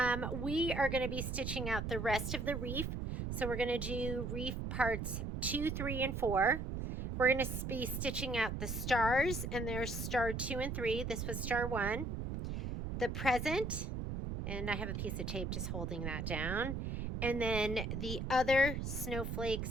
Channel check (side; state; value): right; noise; rumble, 3 dB below the sound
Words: we are going to be stitching out the rest of the wreath. So we're going to do wreath parts 2, 3, and 4. We're going to be stitching out the stars, and there's star 2 and 3. This was star 1. The present, and I have a piece of tape just holding that down. And then the other snowflake